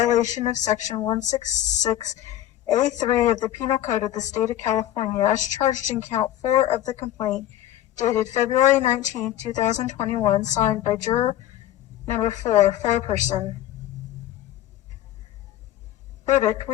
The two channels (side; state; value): right; quieter; 12.9 dB